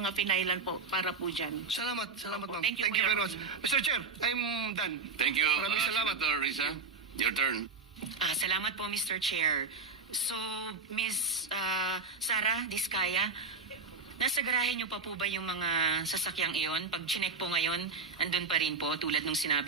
finailan po para po dyan. Salamat, Opo. ma'am. Thank you po, very Your much. Mr. Chair, I'm done. Thank you, Maraming salamat. Senator Risa. Your turn. Salamat po, Mr. Chair. So, Ms. Sara Diskaya, nasa garahe niyo pa po ba yung mga sasakyang iyon? Pag chinek po ngayon, andun pa rin po, tulad nung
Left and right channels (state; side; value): quieter; left; 4.4 dB